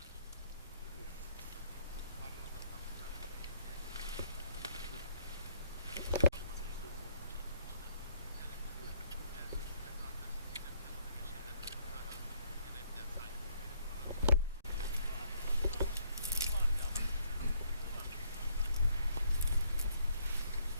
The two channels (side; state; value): both; inverted; correlation -0.69